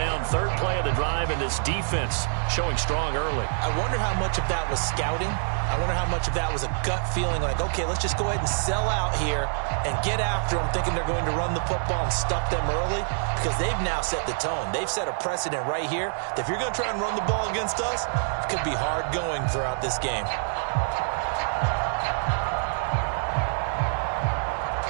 3rd play of the drive, and this defense showing strong early. I wonder how much of that was scouting. I wonder how much of that was a gut feeling like, okay, let's just go ahead and sell out here and get after them, thinking they're going to run the football and stuff them early, because they've now set the tone. They've set a precedent right here that if you're going to try and run the ball against us, it could be hard going throughout this game.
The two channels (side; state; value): left; silent; digital silence